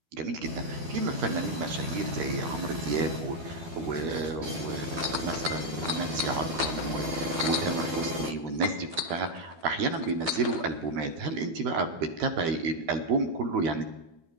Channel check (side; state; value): left; late; 12 ms